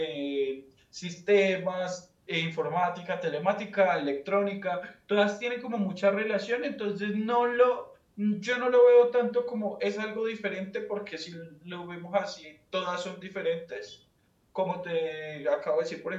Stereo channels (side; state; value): both; identical; correlation 1.00